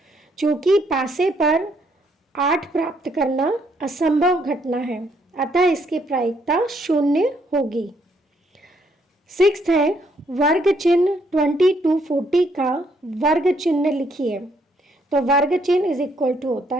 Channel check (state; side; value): normal; both; correlation 0.71